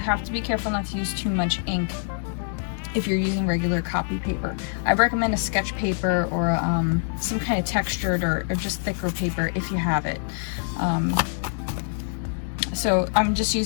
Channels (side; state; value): right; silent; digital silence